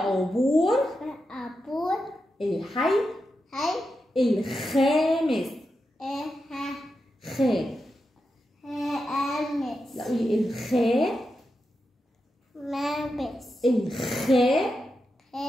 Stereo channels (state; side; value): normal; both; correlation 0.88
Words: أبور الحي هي الخامس. خ. هامس. لا قولي الخ. مامس. الخ.